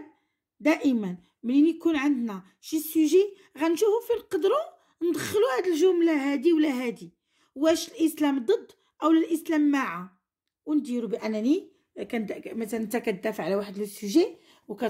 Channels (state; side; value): identical; both; correlation 1.00